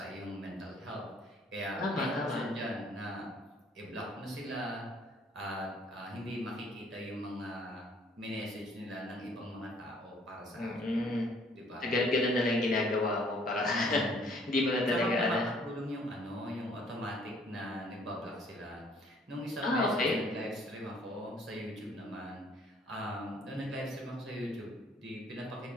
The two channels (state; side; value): normal; both; correlation 0.60